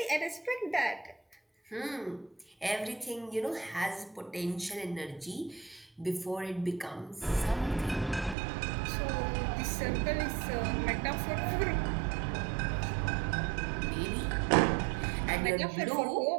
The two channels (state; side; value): drops out; left; at 8.3 s